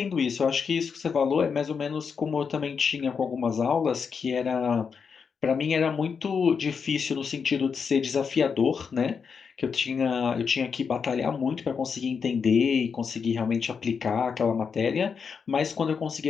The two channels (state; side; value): quieter; right; 6.0 dB